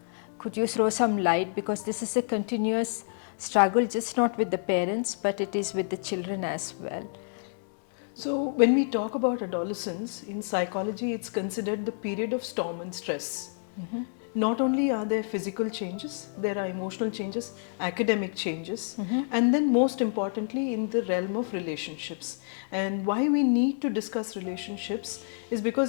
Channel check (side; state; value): right; silent; digital silence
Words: Could you throw some light, because this is a continuous struggle, just not with the parents but it is with the children as well. So when we talk about adolescence, in psychology it's considered the period of storm and stress. Not only are there physical changes, there are emotional changes, academic changes, and then most importantly in the realm of relationships. And why we need to discuss relationships is